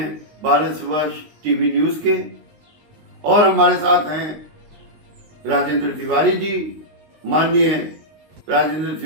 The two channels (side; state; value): left; late; 19 ms